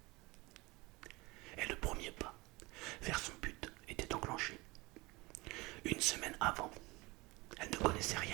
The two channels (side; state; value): left; quieter; 23.2 dB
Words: Et le premier pas vers son but était enclenché. 1 semaine avant, elle ne connaissait